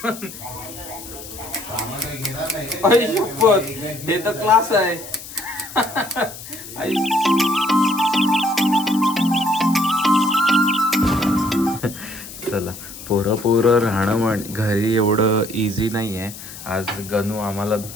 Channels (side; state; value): left; noise; hiss, 13 dB below the sound